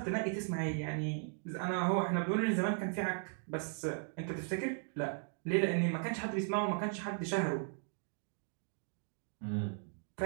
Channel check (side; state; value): left; silent; 53 dB below the other